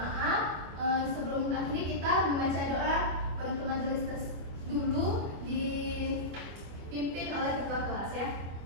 Sebelum akhiri kita membaca doa penutup majelis dulu dipimpin oleh ketua kelas ya.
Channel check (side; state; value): left; late; 25 ms